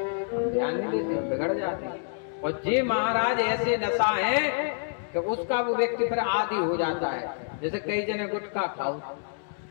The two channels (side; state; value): right; silent; digital silence